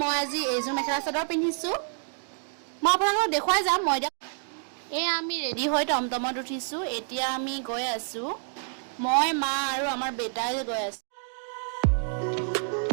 মই আজি এইযোৰ মেখেলা চাদৰ পিন্ধিছো। মই আপোনালোকক দেখুৱাই যাম। মই এয়া আমি ৰেডি হৈ টমটমত উঠিছো। এতিয়া আমি গৈ আছো। মই মা আৰু আমাৰ বেটাই গৈ আছো।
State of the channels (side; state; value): left; silent; 59 dB below the other